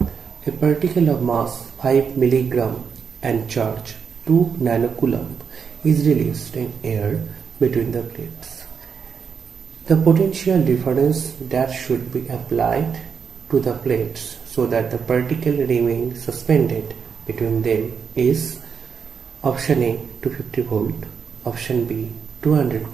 A particle of mass 5 milligram and charge 2 nanocoulomb is released in air between the plates. The potential difference that should be applied to the plates so that the particle remains suspended between them is option A 250 volt, option B 200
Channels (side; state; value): left; quieter; 6.4 dB